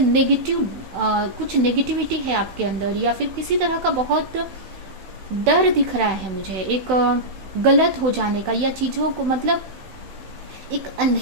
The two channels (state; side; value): late; left; 16 ms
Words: कुछ नेगेटिविटी है आपके अंदर, या फिर किसी तरह का बहुत डर दिख रहा है मुझे, एक गलत हो जाने का, या चीजों को मतलब एक